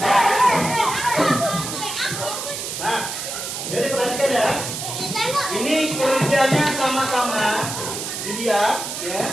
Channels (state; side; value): noise; right; hiss, 6 dB below the sound